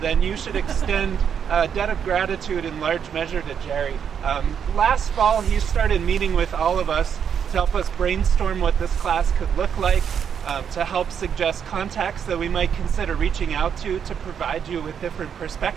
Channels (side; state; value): left; quieter; 7.8 dB